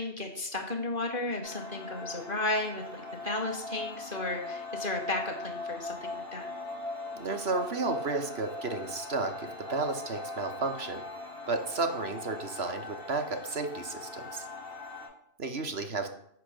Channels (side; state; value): left; late; 3.0 ms